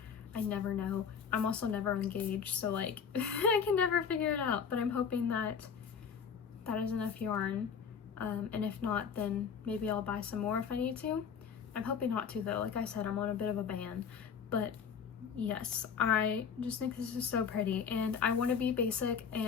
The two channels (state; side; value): quieter; right; 6.8 dB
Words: I never know. I'm also never engaged, so like I can never figure it out, but I'm hoping that that is enough yarn. And if not, then maybe I'll buy some more if I need to. I'm hoping not to though. Like I said, I'm on a bit of a ban. But yes, I just think this is so pretty, and I want to be basic,